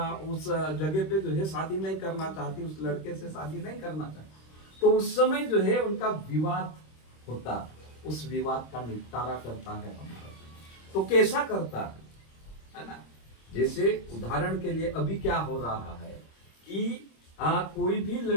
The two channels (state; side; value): late; right; 26 ms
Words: उस जगह पे जो है शादी नहीं करना चाहती, उस लड़के से शादी नहीं करना चाहती, तो उस समय जो है उनका विवाद होता, उस विवाद का निपटारा करता है हमारा। तो कैसा करता है ना? जैसे उदाहरण के लिए अभी क्या हो रहा है कि कोई भी